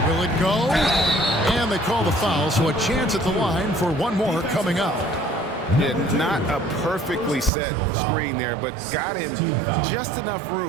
Will it go? And they call the foul, so a chance at the line for one more coming up. Yeah, not a perfectly set screen there, but got him just enough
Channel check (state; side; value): drops out; left; at 7.5 s